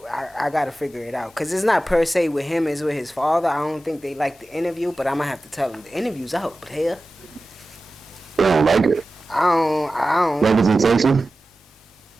got to figure it out. Because it's not per se with him, it's with his father. I don't think they like the interview, but I'm going to have to tell him the interview's out, player. They don't like it. I don't. Representation?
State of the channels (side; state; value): both; normal; correlation 0.95